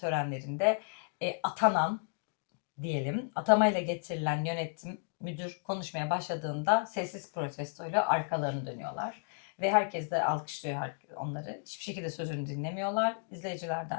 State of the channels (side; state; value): right; silent; digital silence